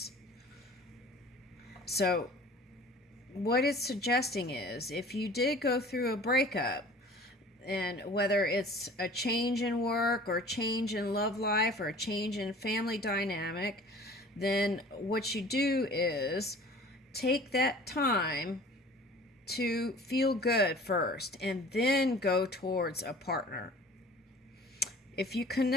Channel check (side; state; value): both; normal; correlation 0.46